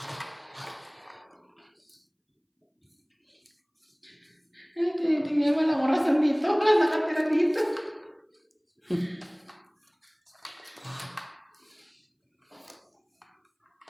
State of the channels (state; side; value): identical; both; correlation 1.00